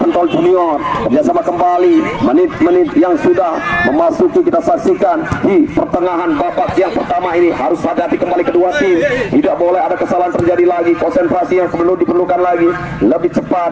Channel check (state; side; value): identical; both; correlation 1.00